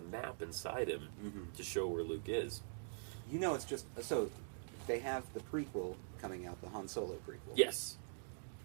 map inside him to show where Luke is. You know, it's just so they have the prequel coming out, the Han Solo prequel. Yes.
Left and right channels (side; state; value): left; silent; digital silence